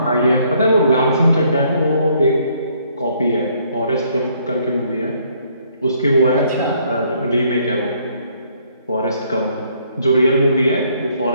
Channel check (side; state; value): both; inverted; correlation -0.66